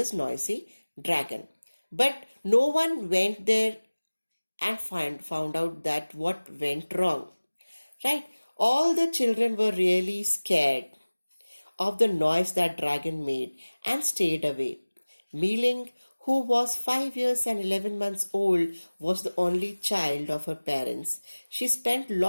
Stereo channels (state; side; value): inverted; both; correlation -1.00